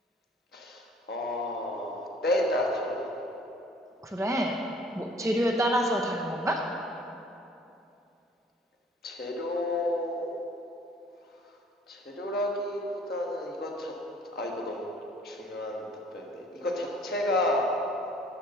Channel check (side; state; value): both; normal; correlation 0.55